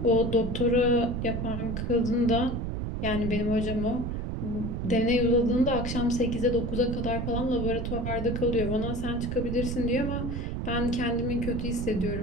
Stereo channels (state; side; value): noise; right; rumble, 3 dB below the sound